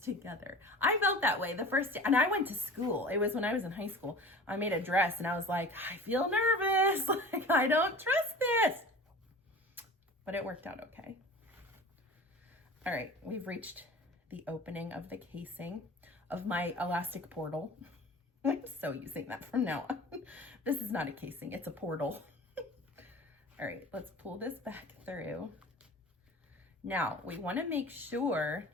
together. I felt that way the first day, and I went to school. It was when I was in high school. I made a dress and I was like, I feel nervous. Like, I don't trust this. But it worked out okay. All right, we've reached the opening of the casing of my elastic portal. I'm so using that from now on. This is not a casing, it's a portal. All right, let's pull this back through. Now, we want to make sure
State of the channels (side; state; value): both; normal; correlation 0.39